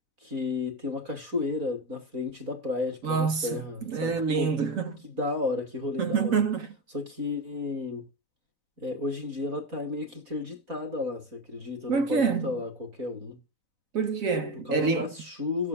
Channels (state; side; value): late; left; 4.0 ms